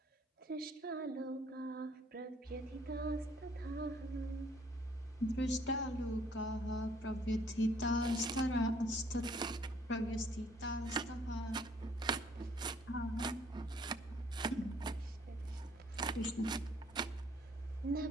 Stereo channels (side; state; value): both; normal; correlation 0.61